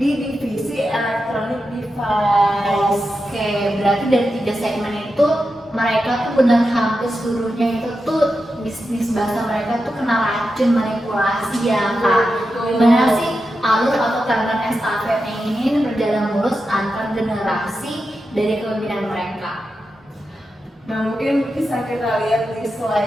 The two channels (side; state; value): both; normal; correlation 0.89